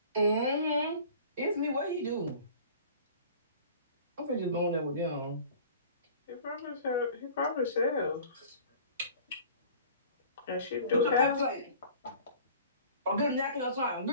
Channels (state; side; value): inverted; both; correlation -0.46